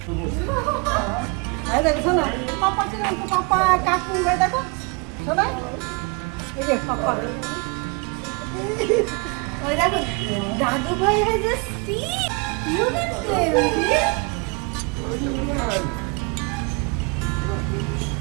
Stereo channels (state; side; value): quieter; left; 31.6 dB